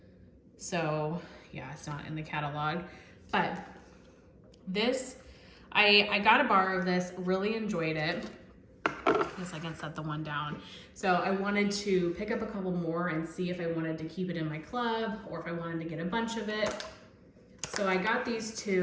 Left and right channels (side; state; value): both; identical; correlation 1.00